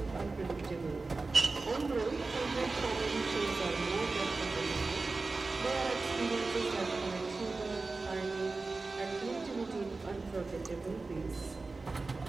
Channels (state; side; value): quieter; left; 3.7 dB